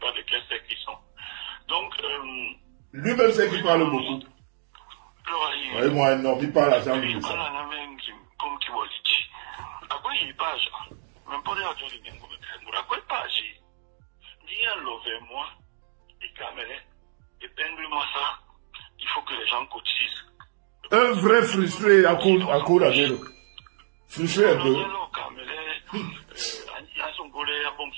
de quel sexe ils sont. Donc, lui-même sait qu'il parle beaucoup. Oui, moi, non, il parle à Jean-Louis. Comme tu vois, à quoi il page? Même pas les gens qui viennent à quoi il page? Viens lever moi, et caméra, épingle-moi ça. Il faut que les gens cotisent. Un vrai frustré à cause à vélo. Frustré un peu. À son volet, à bon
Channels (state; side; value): silent; left; digital silence